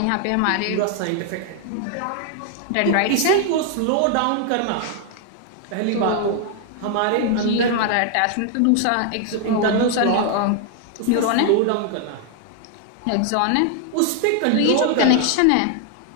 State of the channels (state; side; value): different; both; correlation 0.00